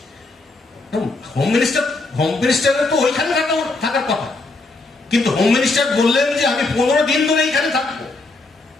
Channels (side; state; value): right; quieter; 3.4 dB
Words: হোম মিনিস্টারের তো ওইখানে থাকার কথা, কিন্তু হোম মিনিস্টার বললেন যে আমি 15 দিন ধরে এইখানে থাকবো।